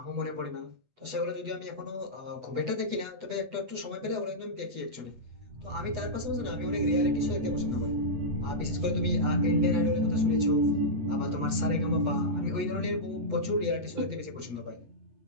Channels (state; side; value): late; left; 8.1 ms